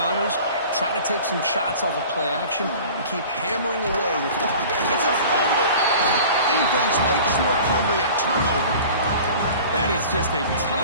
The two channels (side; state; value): both; inverted; correlation -0.42